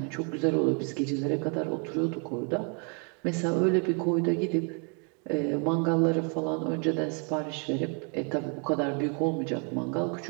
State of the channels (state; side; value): quieter; left; 38.3 dB